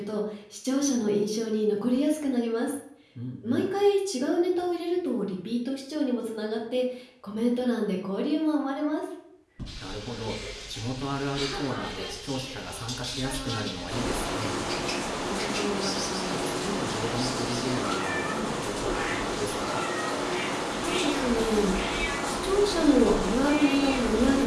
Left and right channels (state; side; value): identical; both; correlation 1.00